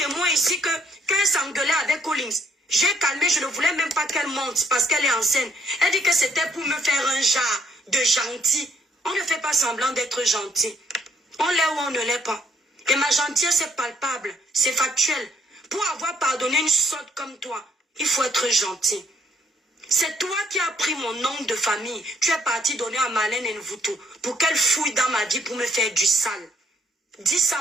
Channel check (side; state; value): both; normal; correlation 0.68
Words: ici que quand elle s'engueulait avec Collins, j'ai calmé, je ne voulais même pas qu'elle monte parce qu'elle est enceinte. Elle dit que c'était pour me faire un genre de gentil. On ne fait pas semblant d'être gentil. On l'est ou on ne l'est pas. Et ma gentillesse est palpable, c'est factuel. Pour avoir pardonné une sotte comme toi, il faut être gentil. C'est toi qui as pris mon nom de famille. Tu es parti donner à Marlène Nvuto pour qu'elle fouille dans ma vie pour me faire du sale. Dis